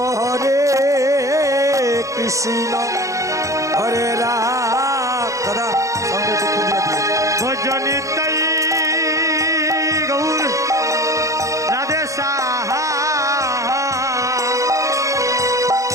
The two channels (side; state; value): left; late; 0.15 ms